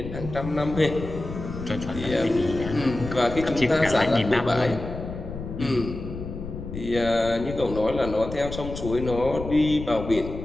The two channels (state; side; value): noise; left; rumble, 9 dB below the sound